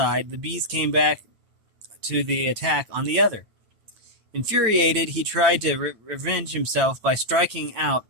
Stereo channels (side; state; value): left; late; 9.0 ms